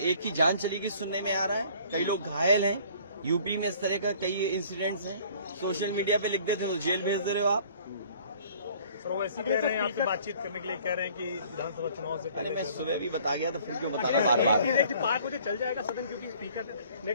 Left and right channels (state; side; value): inverted; both; correlation -0.54